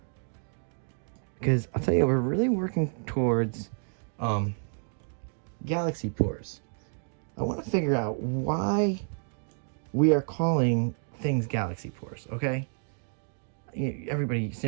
Because I'll tell you, we're really working towards galaxy pores. I want to figure out why we are calling things galaxy pores, okay? Everybody,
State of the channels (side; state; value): left; silent; digital silence